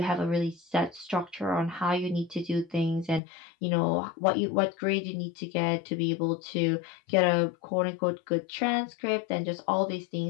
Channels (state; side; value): drops out; right; at 3.2 s